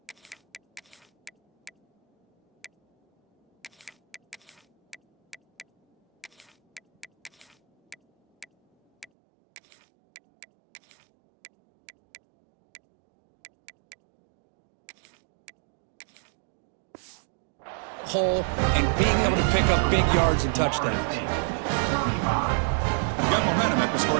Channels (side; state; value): left; drops out; at 9.1 s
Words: hole and being able to pick up big yards and touchdowns. You got momentum after